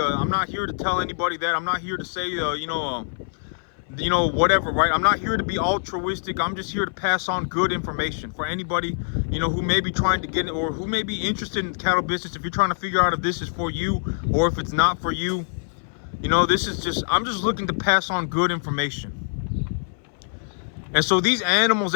not here to tell anybody that. I'm not here to say, whatever, right? I'm not here to be altruistic. I'm just here to pass on good information for anybody, who may be trying to get it, or who may be interested in the cattle business. If you're trying to figure out if this is for you or if it's not for you, this is just, I'm just looking to pass on good information. And so these animals,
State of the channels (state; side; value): silent; right; 60 dB below the other